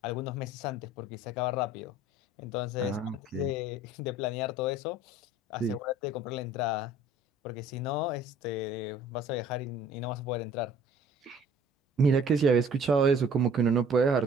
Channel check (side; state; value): both; normal; correlation 0.52